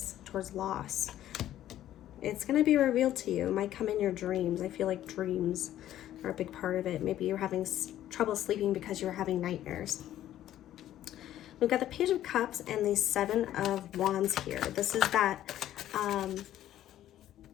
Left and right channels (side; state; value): right; quieter; 12.5 dB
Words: towards loss. It's going to be revealed to you. It might come in your dreams. I feel like dreams are a big part of it. Maybe you're having trouble sleeping because you're having nightmares. We've got the Page of Cups and the Seven of Wands here. This is that